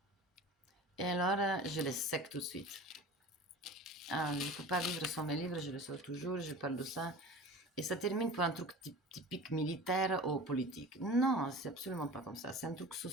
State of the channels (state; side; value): normal; both; correlation 0.37